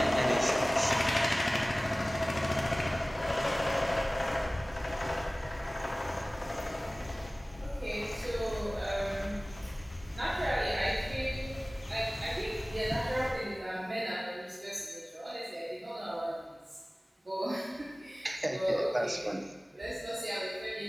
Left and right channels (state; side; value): normal; both; correlation 0.98